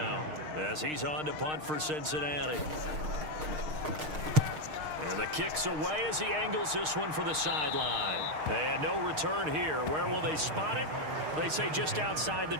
as he's on to punt for Cincinnati. And the kick's away as he angles this one for the sideline. And no return here. Where will they spot it? They say just outside the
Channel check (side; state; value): left; late; 6.5 ms